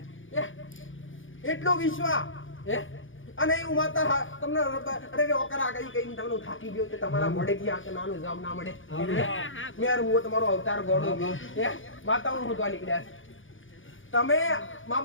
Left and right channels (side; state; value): right; late; 0.57 ms